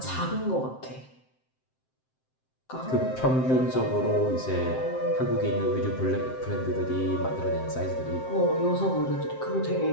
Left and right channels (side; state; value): right; late; 7.7 ms